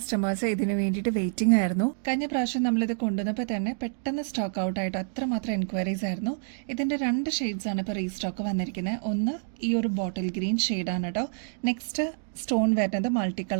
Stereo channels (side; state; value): left; silent; digital silence